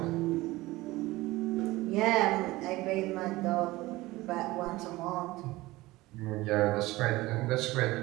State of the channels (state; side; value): quieter; left; 19.2 dB